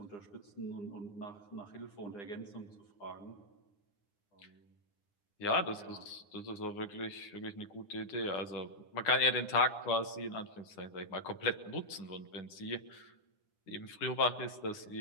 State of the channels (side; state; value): right; late; 9.8 ms